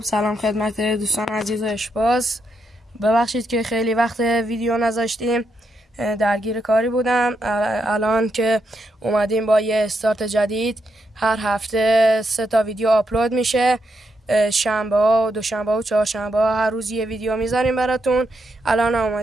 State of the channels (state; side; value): normal; both; correlation 0.81